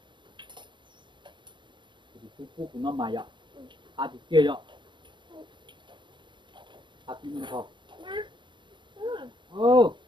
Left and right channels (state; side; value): late; left; 0.23 ms